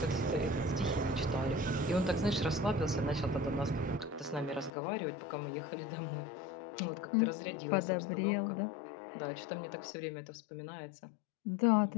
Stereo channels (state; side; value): drops out; right; at 4.7 s